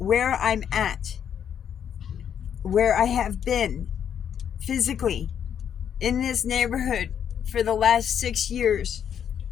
I'm at, where I have been physically in this neighborhood for the last 6 years,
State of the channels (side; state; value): right; quieter; 8.6 dB